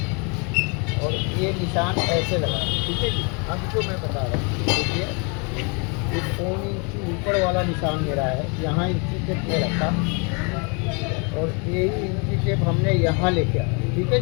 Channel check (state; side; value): quieter; right; 34.0 dB